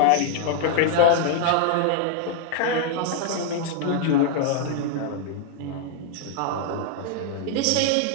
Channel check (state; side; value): different; both; correlation 0.00